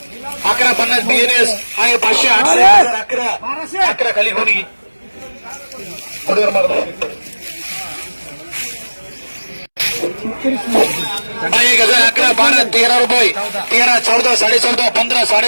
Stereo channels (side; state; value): both; inverted; correlation -1.00